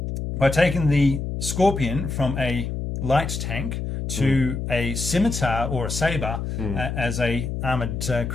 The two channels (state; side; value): noise; left; hum, 4 dB below the sound